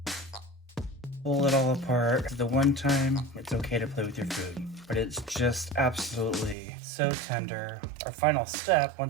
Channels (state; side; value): drops out; left; at 6.6 s